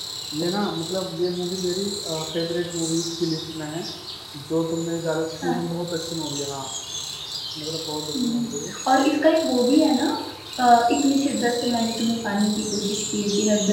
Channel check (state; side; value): identical; both; correlation 1.00